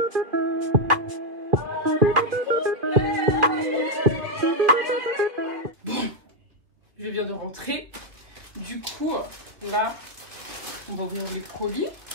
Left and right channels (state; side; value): late; left; 2.7 ms